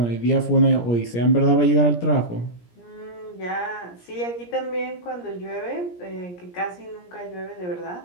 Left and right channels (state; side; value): late; right; 17 ms